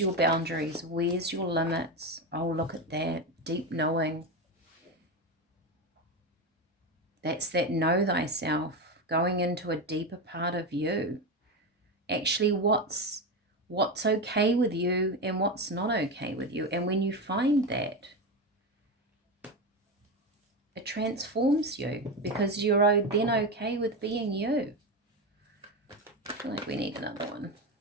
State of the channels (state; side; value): normal; both; correlation 0.16